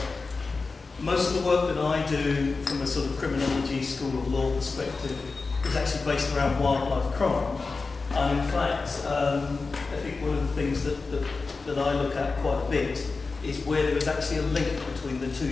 Most of the work that I do from a sort of criminology, school of law perspective is actually based around wildlife crime. And in fact, I think one of the things that I look at quite a bit is where there is actually a link between the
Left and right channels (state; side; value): quieter; right; 4.1 dB